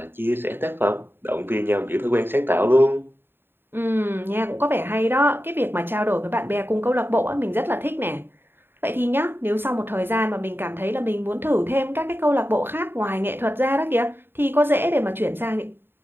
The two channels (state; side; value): late; left; 0.10 ms